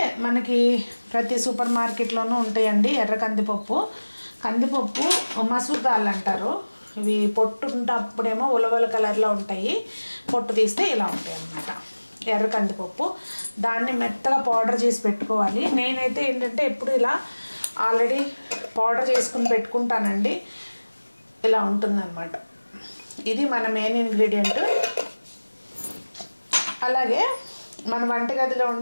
మనకి ప్రతి సూపర్ మార్కెట్లోనూ ఉంటాయండి ఎర్ర కందిపప్పు. కందిపప్పు మసూర్ దాల్ అంటారు. ఇవి పొట్టు ఉన్నప్పుడేమో ఉలవల కలర్లో ఉంటాయి, పొట్టు తీస్తే ఇలా ఉంటాయి అన్నమాట. ఎర్ర కందిపప్పు, దాన్ని మెత్తగా పౌడర్ చేసి పెట్టుకోవాలి. నేనైతే ఏంటంటే ఎప్పుడు ఇలా ఆల్రెడీ పౌడర్ చేసుకుని పెట్టుకుంటానండి. ఇలా ఉంటుందన్నమాట. ఇది మన మెయిన్ ఇంగ్రీడియంట్. అలాగే మన వంటగదిలో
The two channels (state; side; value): inverted; both; correlation -1.00